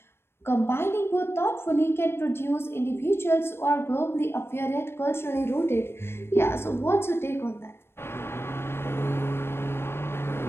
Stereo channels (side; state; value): right; late; 0.12 ms